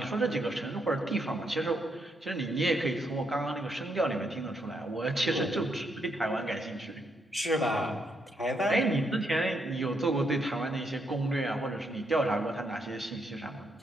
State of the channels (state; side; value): normal; both; correlation 0.77